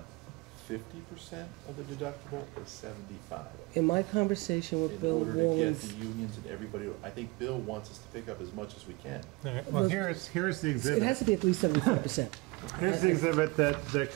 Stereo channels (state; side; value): quieter; left; 24.8 dB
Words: 50% of the deductible or 75? in my conversation with In Bill order to get the Wallens, unions and everybody, I think Bill wants us to pick up as much as we can. All right, well, here's the it exhibit. has to be at least 75%. Here's the exhibit that